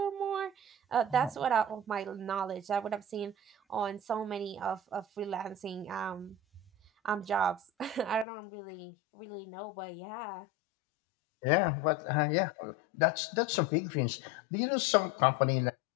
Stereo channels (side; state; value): right; drops out; at 8.2 s